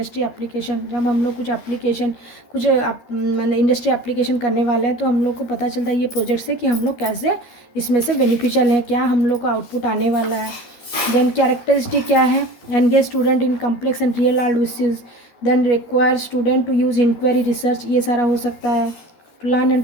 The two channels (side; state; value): right; late; 12 ms